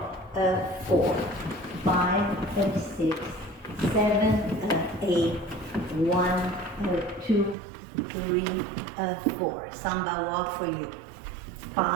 5, 6, 7, 8, 1, 2, 3, 4. Samba walk for you.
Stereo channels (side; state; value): left; drops out; at 7.6 s